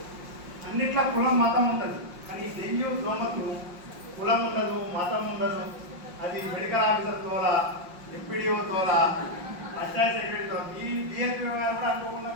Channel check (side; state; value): left; late; 5.6 ms